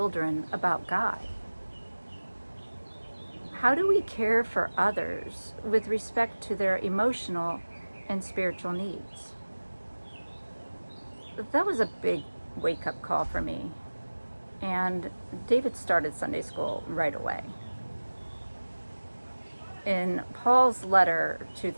about God? How do we care for others with respect to their emotional and spiritual needs? That was a big wake-up call for me, and David started Sunday school right away. In Paul's letter to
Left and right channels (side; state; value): both; inverted; correlation -1.00